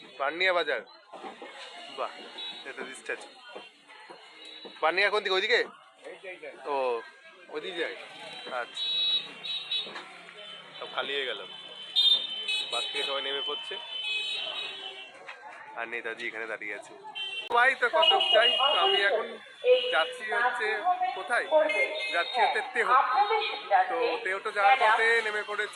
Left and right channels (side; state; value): both; identical; correlation 1.00